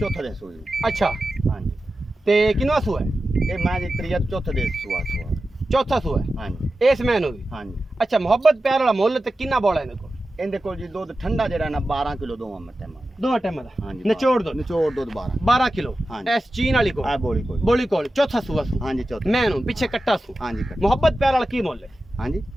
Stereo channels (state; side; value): normal; both; correlation 0.93